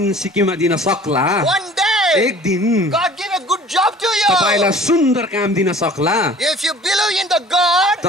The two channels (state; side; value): normal; both; correlation 0.48